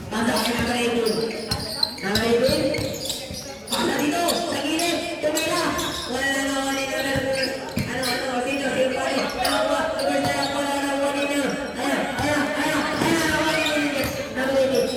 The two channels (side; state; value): both; identical; correlation 1.00